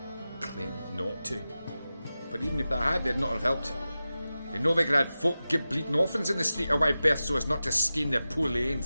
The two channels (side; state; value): both; inverted; correlation -0.94